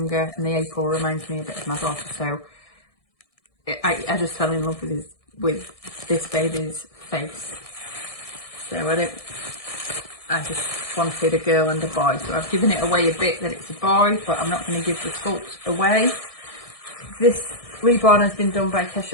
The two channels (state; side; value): late; right; 1.6 ms